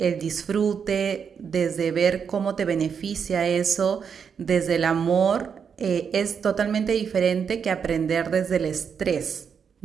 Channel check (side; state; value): left; quieter; 6.8 dB